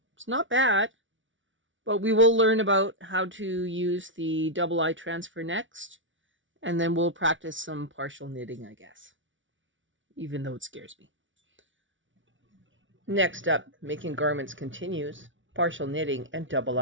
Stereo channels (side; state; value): left; late; 0.56 ms